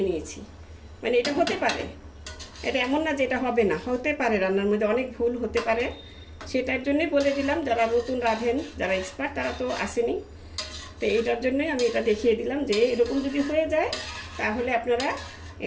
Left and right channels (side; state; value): both; identical; correlation 1.00